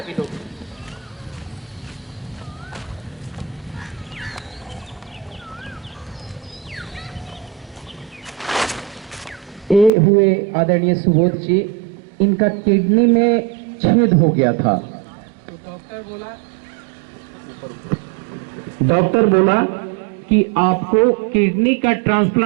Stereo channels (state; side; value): drops out; left; at 9.9 s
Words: लोग। ये हुए आदरणीय सुबोध जी, इनका किडनी में छेद हो गया था। तो डॉक्टर बोला कि आपको किडनी का